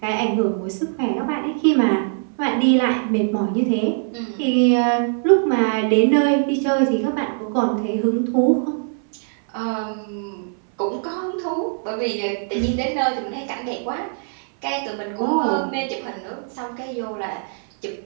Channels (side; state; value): left; silent; 64 dB below the other